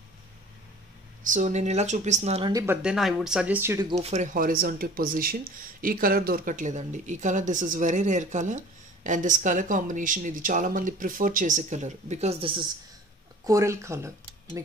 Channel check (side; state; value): both; normal; correlation 0.46